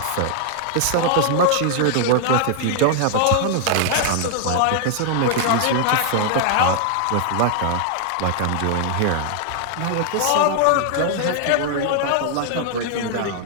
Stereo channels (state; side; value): different; both; correlation 0.00